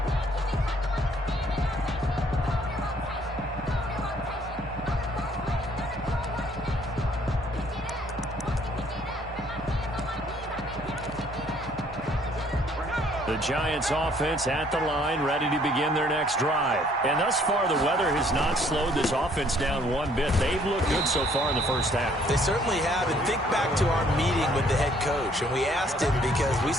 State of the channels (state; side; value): normal; both; correlation 0.62